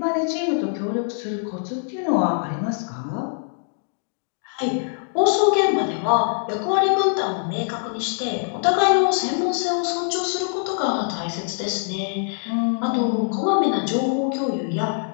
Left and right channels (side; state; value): right; silent; digital silence